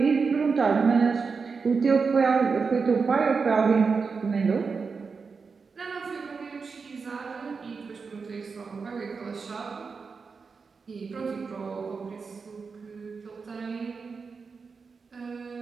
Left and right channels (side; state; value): left; quieter; 5.0 dB